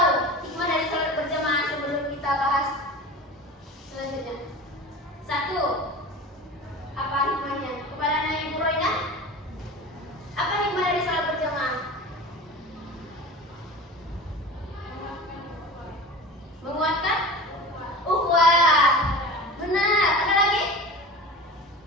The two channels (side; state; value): both; normal; correlation 0.34